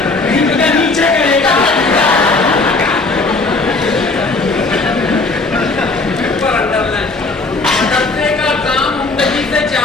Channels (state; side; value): quieter; right; 3.5 dB